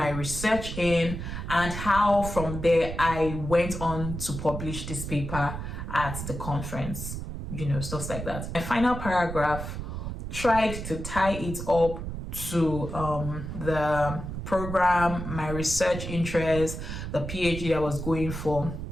research in, and how from there I went on to publish this paper at the conference, stuff like that. My final paragraph tried to tie it up to the program, my research interest, the PhD I was going for.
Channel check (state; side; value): noise; right; rumble, 6 dB below the sound